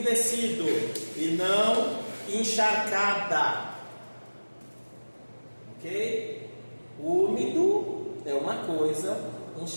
e não encharcada. Ok? Úmido é uma coisa,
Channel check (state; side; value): inverted; both; correlation -1.00